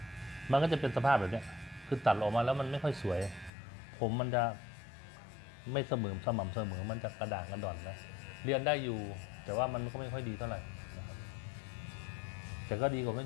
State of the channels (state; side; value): drops out; right; at 3.5 s